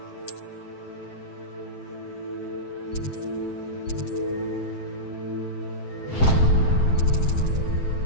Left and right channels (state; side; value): late; right; 7.7 ms